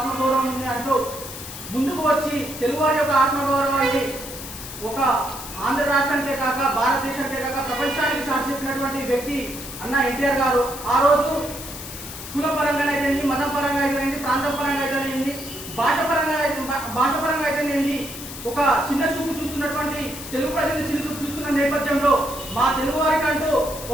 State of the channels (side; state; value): left; noise; hiss, 11 dB below the sound